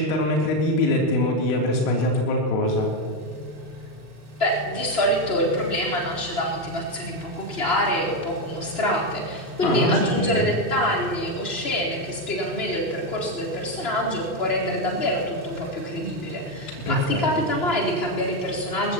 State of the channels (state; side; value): late; right; 3.0 ms